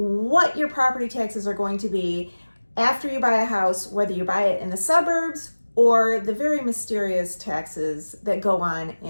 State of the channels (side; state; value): both; inverted; correlation -1.00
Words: your property taxes are going to be after you buy a house, whether you buy it in the suburbs or the very mysterious taxes that go on